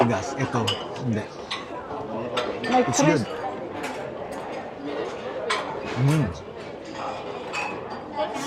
Ito, hindi. Like It's good.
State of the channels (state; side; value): identical; both; correlation 1.00